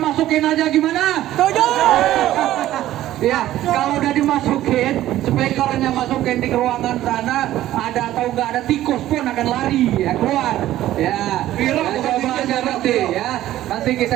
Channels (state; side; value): quieter; left; 13.9 dB